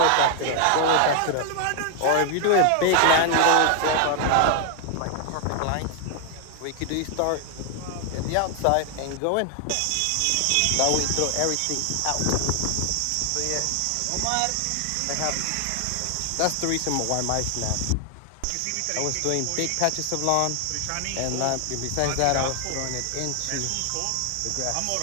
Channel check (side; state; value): both; different; correlation 0.00